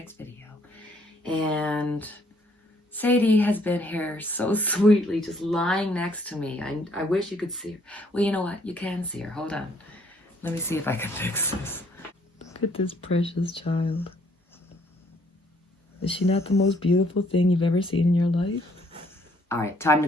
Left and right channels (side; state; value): both; normal; correlation 0.65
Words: video. And Sadie has been here so sweetly, just lying next to me. I wish you could see her. Well, you know what? You can see her. Hold on. Let me see if I can fix this. Look at this precious child. Is she not the most beautiful thing you've ever seen in your life? All right, time to